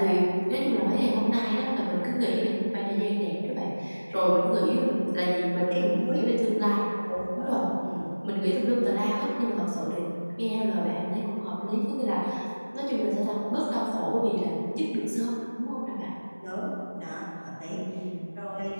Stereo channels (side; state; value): both; inverted; correlation -1.00